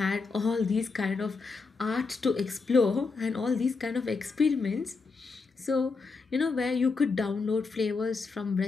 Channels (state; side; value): quieter; right; 4.4 dB